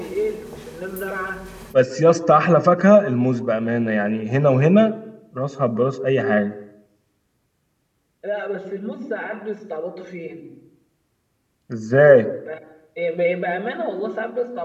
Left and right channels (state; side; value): identical; both; correlation 1.00